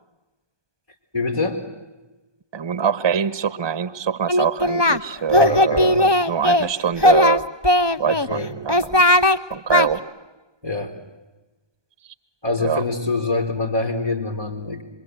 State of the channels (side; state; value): left; late; 1.2 ms